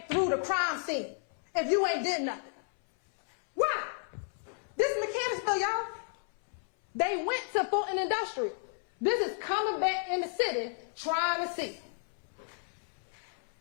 through the crime scene if you ain't did nothing? Why? This is Mechanicsville, y'all. They went to Fulton Industrial. This is coming back in the city trying to see.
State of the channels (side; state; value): right; silent; 56 dB below the other